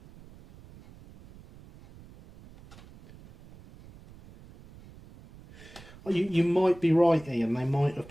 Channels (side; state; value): right; noise; rumble, 21 dB below the sound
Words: You might be right, Ian. They might have